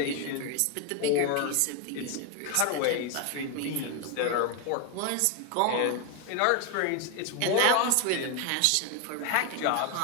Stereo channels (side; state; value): both; different; correlation 0.01